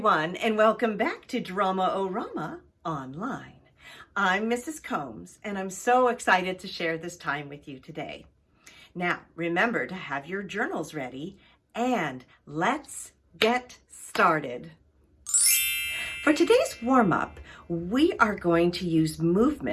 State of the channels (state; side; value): identical; both; correlation 1.00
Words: and welcome back to Drama-O-Rama online. I'm Mrs. Combs, and I'm so excited to share this time with you today. Now, remember to have your journals ready, and let's get started. For today's warm-up, we are going to use